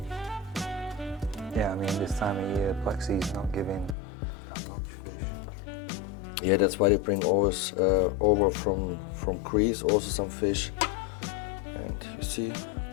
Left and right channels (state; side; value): drops out; right; at 4.0 s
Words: yeah, I mean, this time of year, Black Sea's not giving that much fish. Yeah, that's why they bring always over from Greece also some fish. And you see